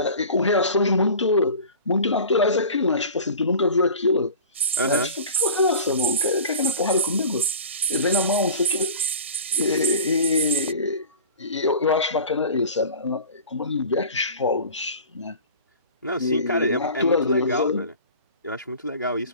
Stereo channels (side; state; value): both; inverted; correlation -0.39